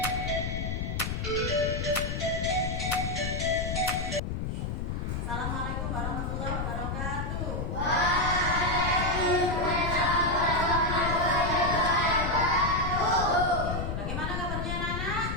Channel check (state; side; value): noise; left; rumble, 2 dB below the sound